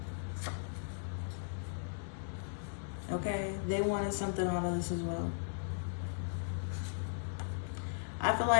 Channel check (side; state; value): right; silent; digital silence